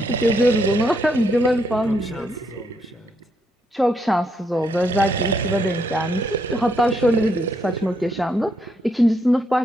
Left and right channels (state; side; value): normal; both; correlation 0.76